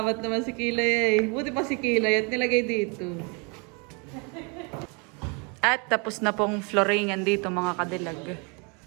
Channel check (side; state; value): left; quieter; 33.0 dB